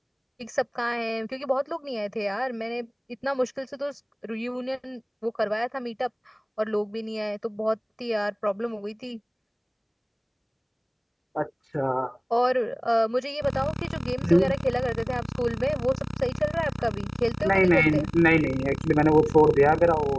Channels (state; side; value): identical; both; correlation 1.00